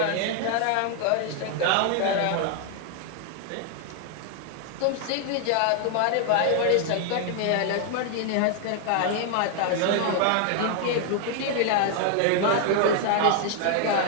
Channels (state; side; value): different; both; correlation 0.00